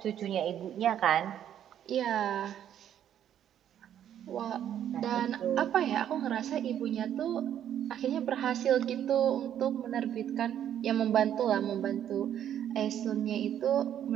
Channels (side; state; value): left; quieter; 10.2 dB